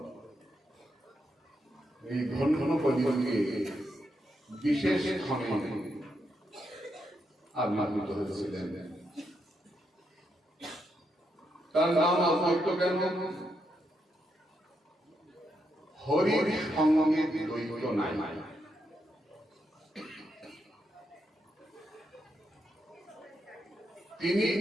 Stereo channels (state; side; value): normal; both; correlation 0.81